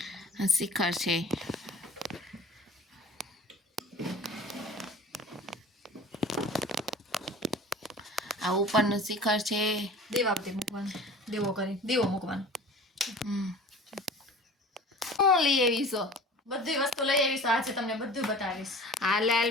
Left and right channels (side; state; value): both; normal; correlation 0.42